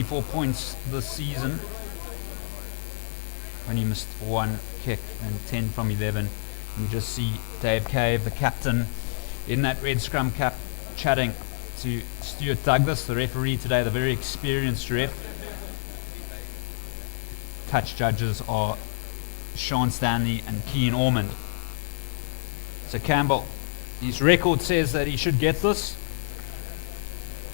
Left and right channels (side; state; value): right; silent; 60 dB below the other